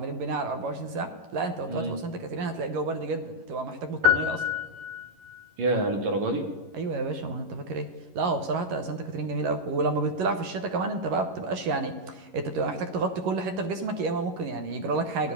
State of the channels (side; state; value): left; late; 11 ms